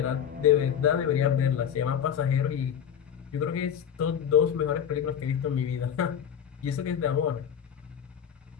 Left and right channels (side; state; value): right; quieter; 8.6 dB